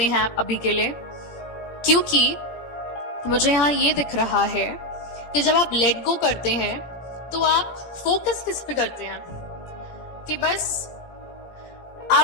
हैं आप अभी के लिए। क्योंकि मुझे यहाँ ये दिख रहा है कि जब आप लेट गो करते हैं तो आप फोकस किस पे करते हैं, कि बस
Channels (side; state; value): right; late; 18 ms